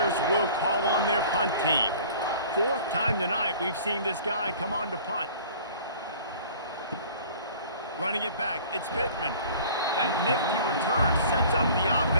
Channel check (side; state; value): both; inverted; correlation -0.47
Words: will call on their punt team. 4th time tonight we've seen this guy come on to punt. Running it back, it's Pittman. That nifty return sets up the